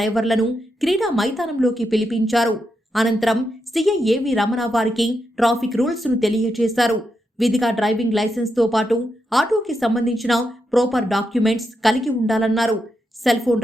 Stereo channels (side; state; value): both; normal; correlation 0.84